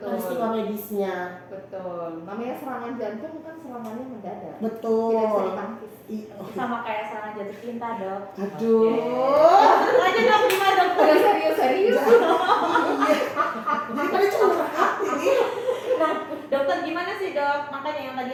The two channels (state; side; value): identical; both; correlation 1.00